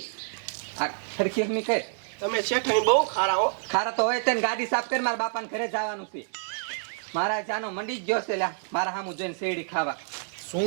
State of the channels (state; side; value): silent; left; 60 dB below the other